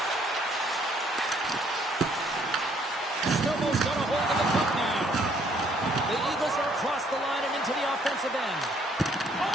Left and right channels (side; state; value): both; normal; correlation 0.65